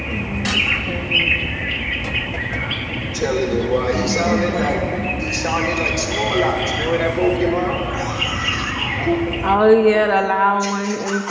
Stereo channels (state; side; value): identical; both; correlation 1.00